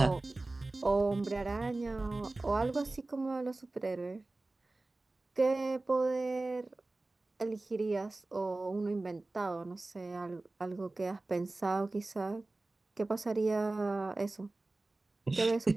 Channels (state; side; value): quieter; left; 3.1 dB